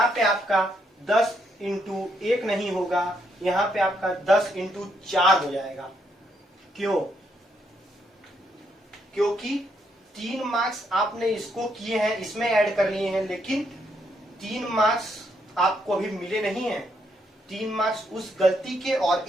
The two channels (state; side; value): normal; both; correlation 0.76